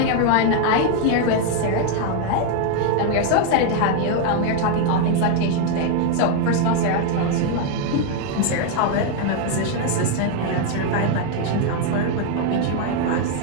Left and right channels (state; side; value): different; both; correlation 0.01